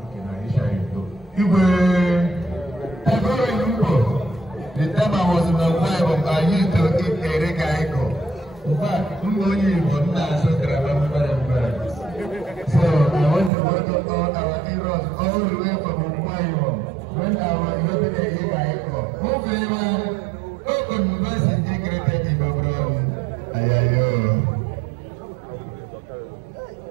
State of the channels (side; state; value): left; drops out; at 13.5 s